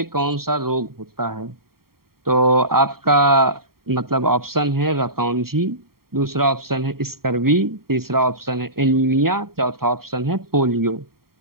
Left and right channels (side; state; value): left; late; 0.93 ms